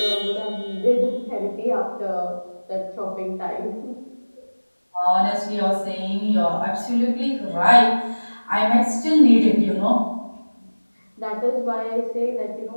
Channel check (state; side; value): inverted; both; correlation -1.00